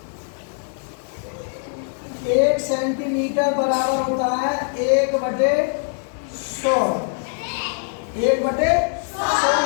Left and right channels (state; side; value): silent; right; 62 dB below the other